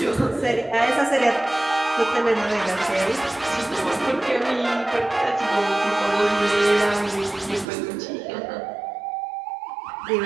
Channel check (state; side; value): drops out; left; at 7.7 s